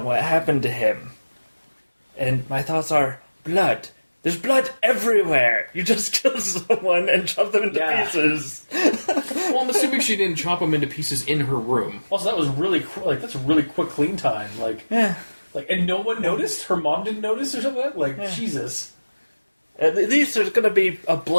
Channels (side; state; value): both; inverted; correlation -1.00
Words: what happened to him. And my thoughts are, blood. There's blood everywhere. You just kill someone and chop them into pieces. Well, I'm assuming she didn't chop them into pieces in her room. Also, that was really that's a really quick clean time. And no one noticed? Her mom didn't notice or something like that? Jesus. At least there's going to be a